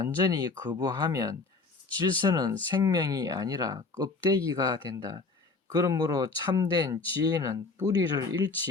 거부하면 질서는 생명이 아니라 껍데기가 된다. 그러므로 참된 지혜는 뿌리를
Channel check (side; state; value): right; quieter; 4.1 dB